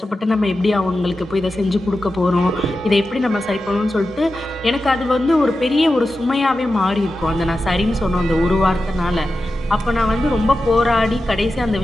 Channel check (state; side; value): normal; both; correlation 0.92